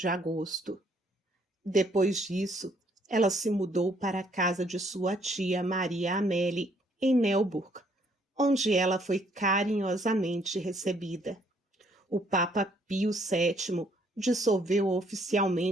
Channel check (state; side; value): normal; both; correlation 0.66